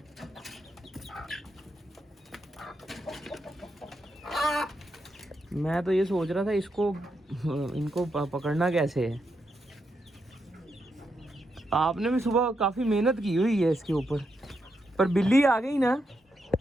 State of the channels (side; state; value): both; normal; correlation 0.83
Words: मैं तो ये सोच रहा था इसको इनको पकड़ना कैसे है। आपने भी सुबह काफ़ी मेहनत की हुई है इसके ऊपर, पर बिल्ली आ गई ना